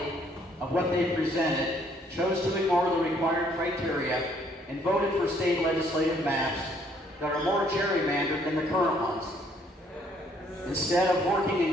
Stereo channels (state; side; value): normal; both; correlation 0.65